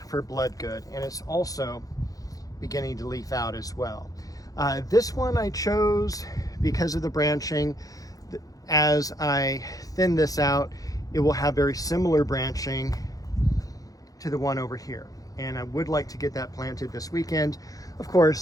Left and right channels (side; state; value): right; late; 0.17 ms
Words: for blood good. And it's also beginning to leaf out as well. This one I chose because of the branching. As I thin this out, it will have very similar branching to the one over here. And I would like to get that planted this weekend. Of